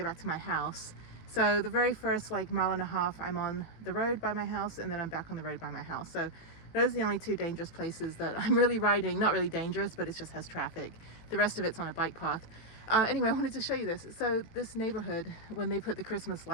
back to my house. So the very first like mile and a half I'm on the road by my house, and then I'm back on the road by my house. So those are the only 2 dangerous places that I'm really riding. Not really dangerous, but it just has traffic. The rest of it's on a bike path. Anyway, I wanted to show you this. So this neighborhood, when they put the Christmas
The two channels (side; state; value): right; late; 18 ms